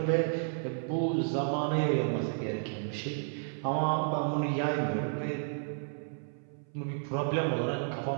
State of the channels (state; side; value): silent; left; 56 dB below the other